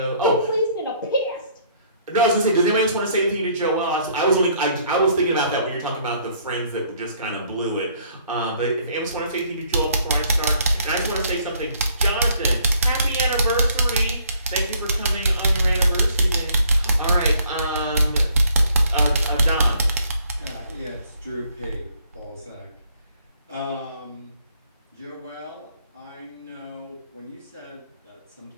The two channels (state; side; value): inverted; both; correlation -0.63